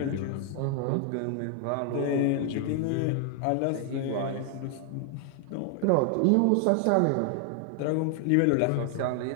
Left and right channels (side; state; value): both; different; correlation 0.00